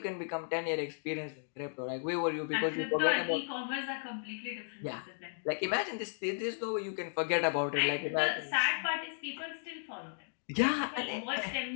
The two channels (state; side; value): silent; right; digital silence